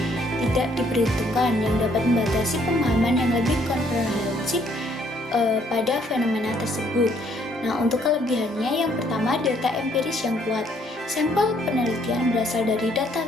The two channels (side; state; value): both; normal; correlation 0.66